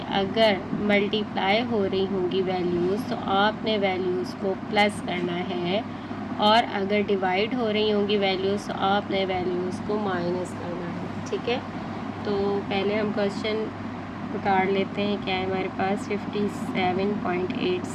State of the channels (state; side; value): identical; both; correlation 1.00